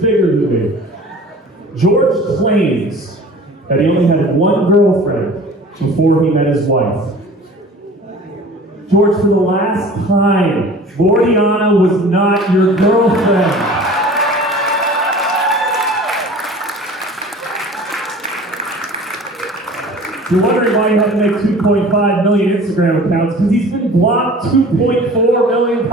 than me. George claims that he only had one girlfriend before he met his wife. George, for the last time, Gordiana was not your girlfriend. You're wondering why you have to make 2.5 million Instagram accounts, because he's been blocked 2.4 million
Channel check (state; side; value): normal; both; correlation 0.43